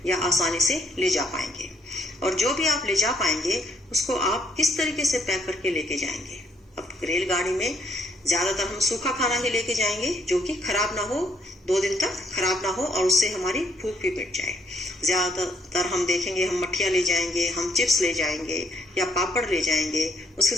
या आसानी से ले जा पाएंगे, और जो भी आप ले जा पाएंगे उसको आप किस तरीके से पैक करके लेके जाएंगे। अब रेलगाड़ी में ज्यादातर हम सूखा खाना ही लेके जाएंगे जो कि खराब ना हो, 2 दिन तक खराब ना हो और उससे हमारी भूख भी मिट जाए। ज्यादातर हम देखेंगे हम मठिया ले जाएंगे, हम चिप्स ले जाएंगे या पापड़ ले जाएंगे, उसके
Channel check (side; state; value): both; normal; correlation 0.70